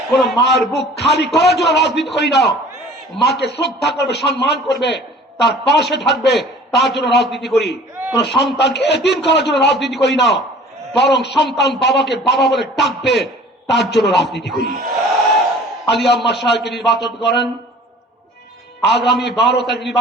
কোন মায়ের বুক খালি করার জন্য রাজনীতি করি না। মাকে শ্রদ্ধা করবে, সম্মান করবে, তার পাশে থাকবে, তার জন্য রাজনীতি করি। কোন সন্তানকে এতিম করার জন্য রাজনীতি করি না, বরং সন্তান বাবাকে বাবা বলে ডাকবে, তার জন্য রাজনীতি করি। আলী আম্মা সাহেবকে নির্বাচন করেন, আগামী 12 তারিখ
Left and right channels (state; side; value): normal; both; correlation 0.48